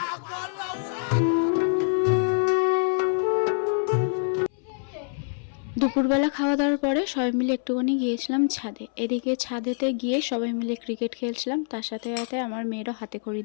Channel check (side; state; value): right; silent; 59 dB below the other